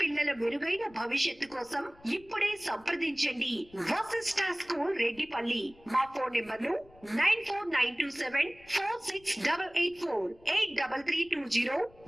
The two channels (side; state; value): left; noise; rumble, 26 dB below the sound